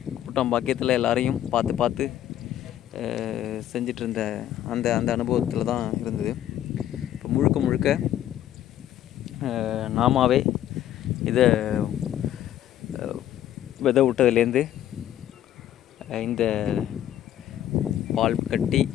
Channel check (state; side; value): quieter; right; 11.8 dB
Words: கூட்டம் பாக்கியத்தில் எல்லாரையும் பார்த்து செஞ்சிட்ருந்த அந்த அனுபவத்தில் தான் இருந்தது. முழுக்க நாமாவே இதை விதை விட்டதுலேருந்து இந்த பால் கட்டி